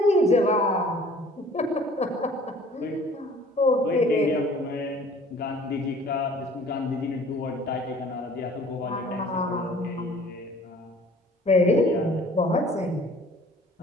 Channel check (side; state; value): both; normal; correlation 0.52